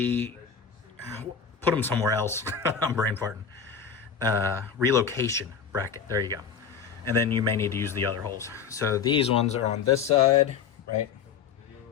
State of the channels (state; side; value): quieter; right; 6.7 dB